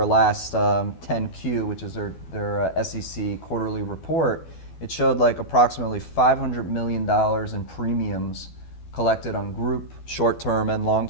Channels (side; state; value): right; late; 12 ms